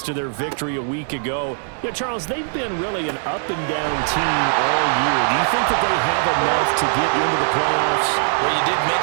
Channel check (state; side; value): silent; left; digital silence